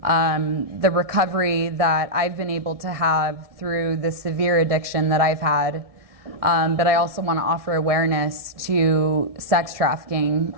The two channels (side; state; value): left; late; 1.7 ms